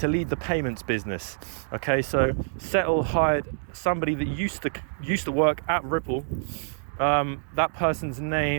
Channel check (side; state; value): left; silent; digital silence